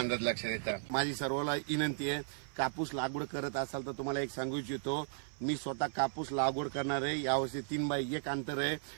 लक्षात येतात. माझी सर्वांना विनंती आहे, कापूस लागवड करत असाल तर तुम्हाला एक सांगू इच्छितो, मी स्वतः कापूस लागवड करणार आहे. यावर्षी 3x1 अंतर आहे.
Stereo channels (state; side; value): silent; left; 54 dB below the other